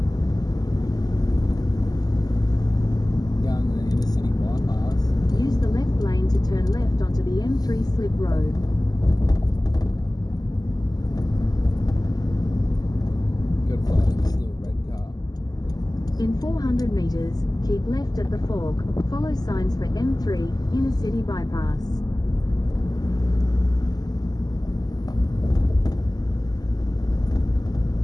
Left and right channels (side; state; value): right; late; 0.19 ms